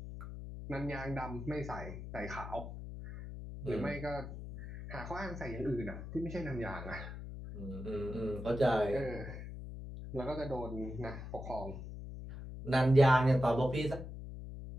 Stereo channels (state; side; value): noise; left; hum, 9 dB below the sound